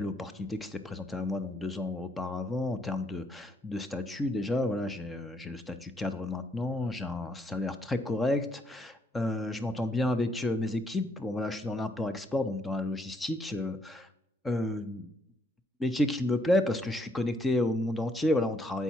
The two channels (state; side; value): normal; both; correlation 0.71